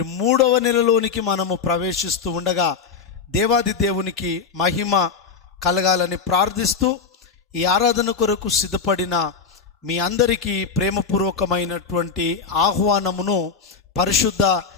3వ నెలలోనికి మనము ప్రవేశిస్తూ ఉండగా దేవాది దేవునికి మహిమ కలగాలని ప్రార్థిస్తూ ఈ ఆరాధన కొరకు సిద్ధపడిన మీ అందరికీ ప్రేమపూర్వకమైనటువంటి ఆహ్వానమును పరిశుద్ధ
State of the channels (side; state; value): right; quieter; 5.6 dB